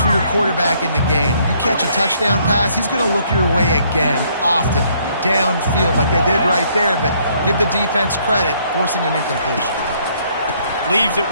your quarterback in the game. You catch a touchdown pass, he's going to look your way again, often, downfield like they did right there, but give the defense credit, forcing an incompletion. Leaves it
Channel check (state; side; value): inverted; both; correlation -0.66